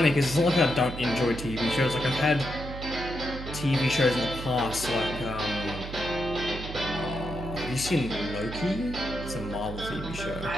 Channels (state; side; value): noise; right; hum, 9 dB below the sound